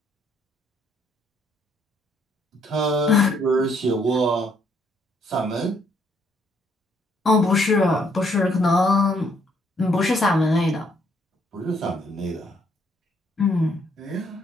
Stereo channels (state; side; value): normal; both; correlation 0.69